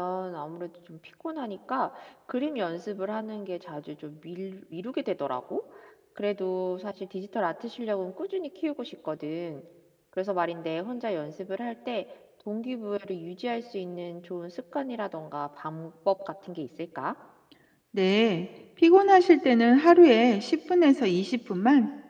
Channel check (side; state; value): both; identical; correlation 1.00